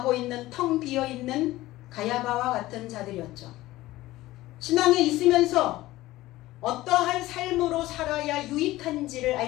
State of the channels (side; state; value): right; quieter; 17.1 dB